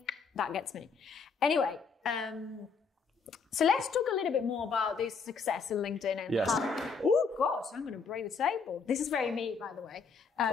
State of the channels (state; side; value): quieter; right; 5.2 dB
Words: that gets me. Anyway, so let's talk a little bit more about this success in LinkedIn and oh gosh, I'm going to break the table. This is very me, by the way.